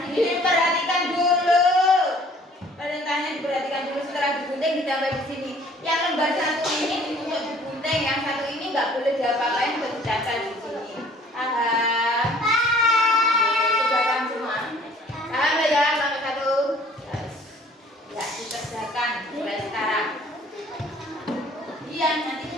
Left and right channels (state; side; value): normal; both; correlation 0.54